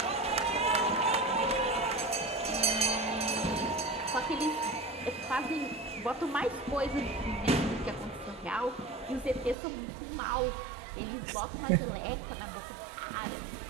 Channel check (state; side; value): drops out; left; at 9.6 s